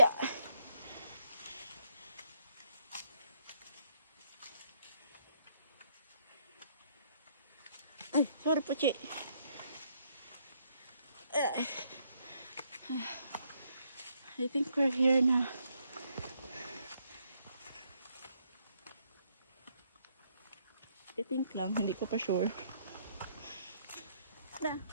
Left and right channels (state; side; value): inverted; both; correlation -0.71